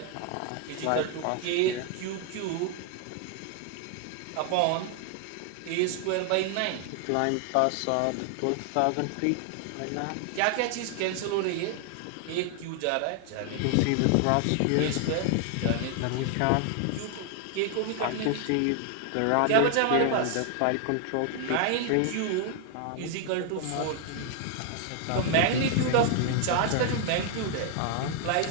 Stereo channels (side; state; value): both; different; correlation 0.00